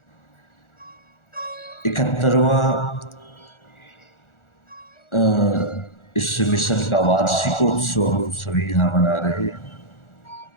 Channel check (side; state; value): right; late; 1.4 ms